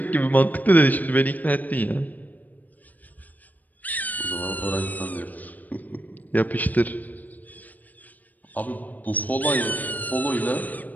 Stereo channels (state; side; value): late; right; 0.081 ms